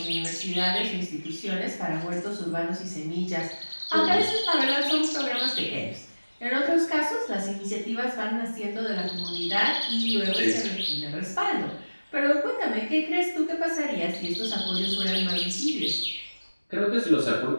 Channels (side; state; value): both; inverted; correlation -1.00